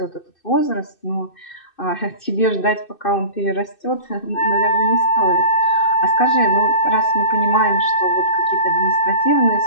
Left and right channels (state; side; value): late; right; 2.6 ms